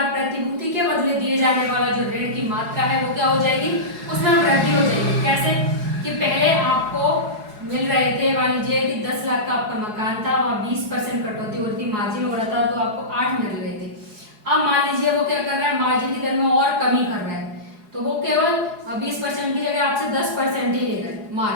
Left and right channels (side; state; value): left; late; 4.8 ms